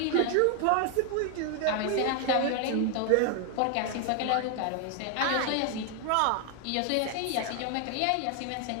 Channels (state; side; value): different; both; correlation 0.00